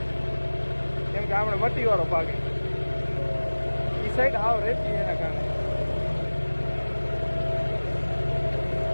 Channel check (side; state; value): both; inverted; correlation -1.00